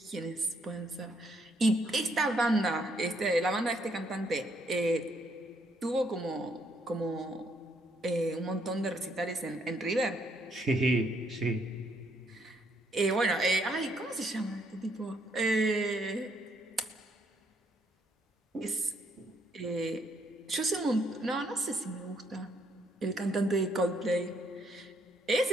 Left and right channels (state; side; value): normal; both; correlation 0.71